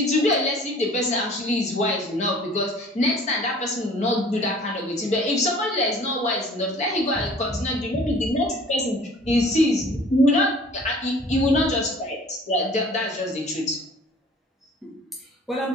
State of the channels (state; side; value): normal; both; correlation 0.49